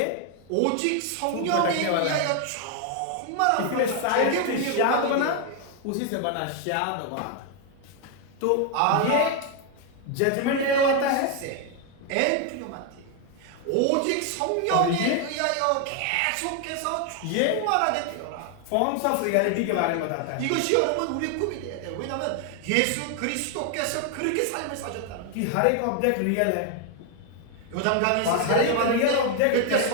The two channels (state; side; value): different; both; correlation 0.01